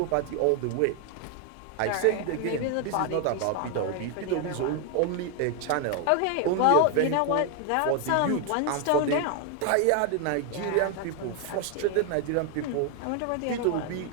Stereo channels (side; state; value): both; different; correlation 0.00